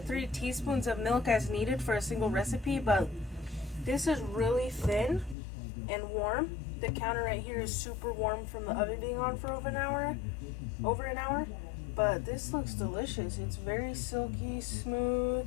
3 teaspoons of milk as needed for a single recipe, but this is really thin and warm. The counter right here is super warm from the oven being on for over an hour. But this looks delicious. It's very silky,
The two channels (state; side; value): drops out; right; at 5.4 s